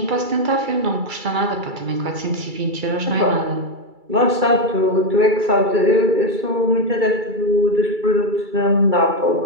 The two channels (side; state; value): left; late; 2.3 ms